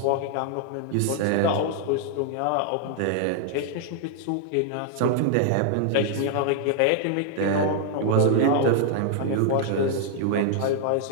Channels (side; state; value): both; different; correlation 0.00